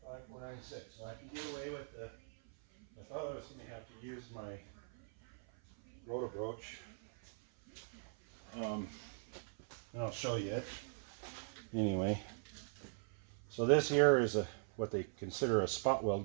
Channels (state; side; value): silent; left; 50 dB below the other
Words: 496. So I can get away with the. I thought I was going to have to use my rotor broach. And I'll show you it. Anyway, so this here is what they consider a spot